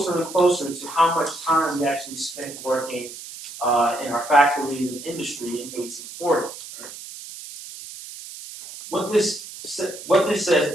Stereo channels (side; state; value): right; noise; hiss, 13 dB below the sound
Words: and closer to how much time we actually spent working in our factories and industry in 1840. Right? What this says,